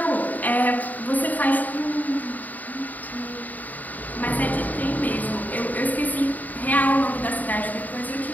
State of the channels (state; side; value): late; right; 0.081 ms